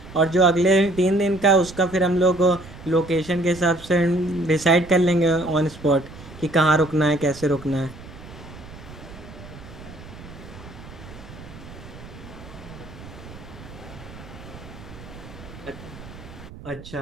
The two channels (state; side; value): noise; right; rumble, 16 dB below the sound